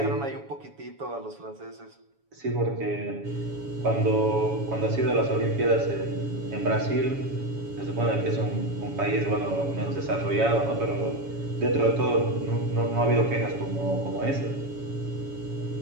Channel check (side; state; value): left; late; 7.1 ms